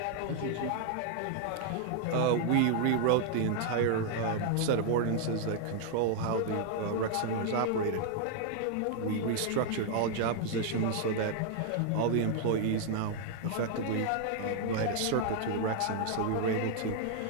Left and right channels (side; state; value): both; different; correlation 0.00